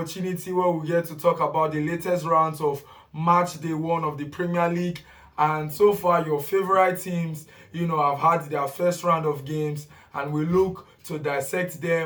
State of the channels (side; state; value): both; identical; correlation 1.00